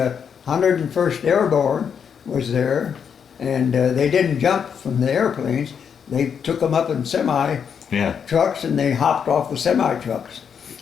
101st Airborne was there, and they didn't jump from the airplanes. They took them up in semi Yeah. trucks, and they hopped off the semi trucks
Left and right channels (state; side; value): quieter; right; 7.2 dB